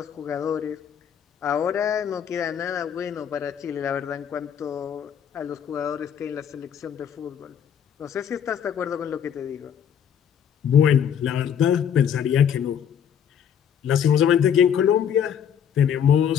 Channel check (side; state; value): right; quieter; 8.5 dB